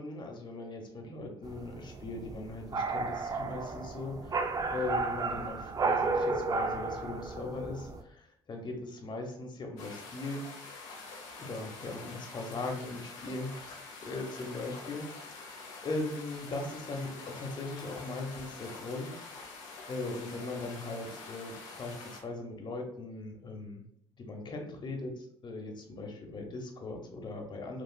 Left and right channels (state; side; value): normal; both; correlation 0.50